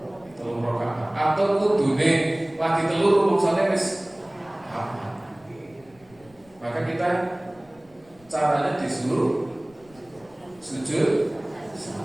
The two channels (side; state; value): left; noise; rumble, 28 dB below the sound